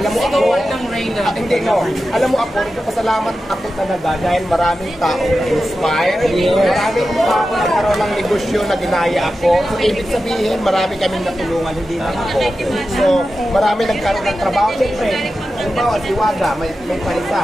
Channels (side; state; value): both; normal; correlation 0.92